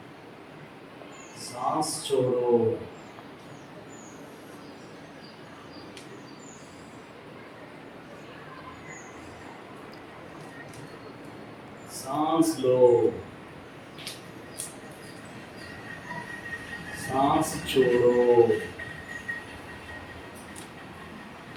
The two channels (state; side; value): identical; both; correlation 1.00